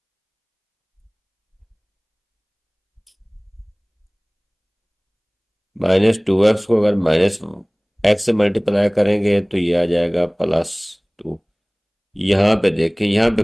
-2x को अगर -x से मल्टीप्लाई करेंगे तो ये आ जाएगा +2। यहाँ पे देखें, यहाँ पे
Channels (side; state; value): both; identical; correlation 1.00